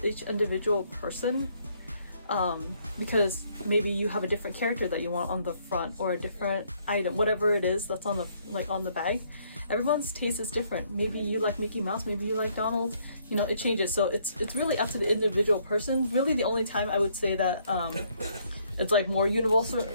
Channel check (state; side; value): inverted; both; correlation -0.68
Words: each individual person, because maybe you have a different character that you want on the front or a different item, whatever it is that's on the bag. Everyone's taste is different. Maybe you like Mickey Mouse, maybe you like Donald, you know, it changes. So it's really up to the individual person. Really, the only time I would say that it's like more